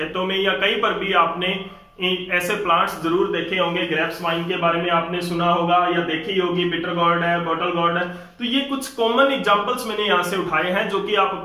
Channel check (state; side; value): identical; both; correlation 1.00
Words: में या कहीं पर भी आपने ऐसे प्लांट्स जरूर देखे होंगे। ग्रेप्स वाइन के बारे में आपने सुना होगा या देखी होगी, बिटर गॉर्ड है, बॉटल गॉर्ड है। तो ये कुछ कॉमन एग्जांपल्स मैंने यहां से उठाए हैं जो कि आप